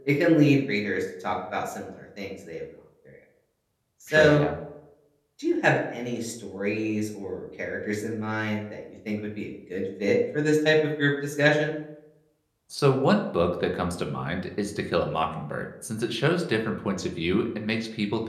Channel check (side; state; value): both; identical; correlation 1.00